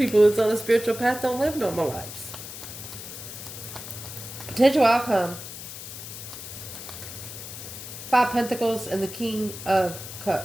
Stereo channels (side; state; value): left; noise; hiss, 11 dB below the sound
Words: that's on a spiritual path don't live normal lives. Potential outcome. 5 Pentacles and the King of